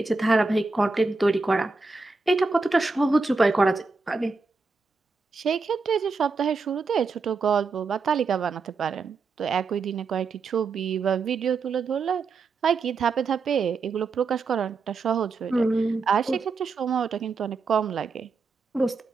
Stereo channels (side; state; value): left; quieter; 4.3 dB